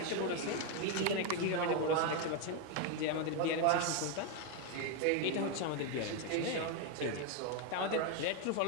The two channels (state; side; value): different; both; correlation 0.01